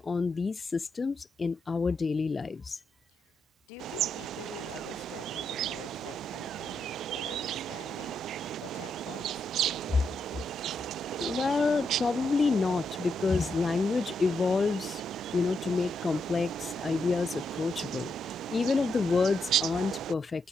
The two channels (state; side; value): normal; both; correlation 0.81